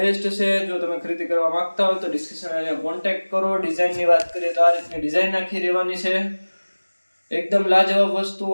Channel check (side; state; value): both; inverted; correlation -1.00